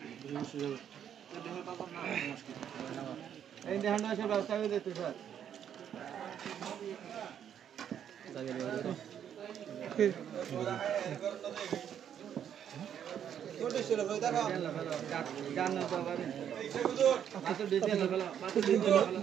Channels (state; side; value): quieter; left; 9.2 dB